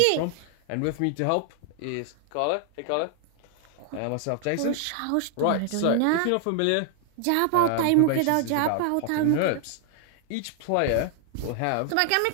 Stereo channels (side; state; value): both; different; correlation 0.00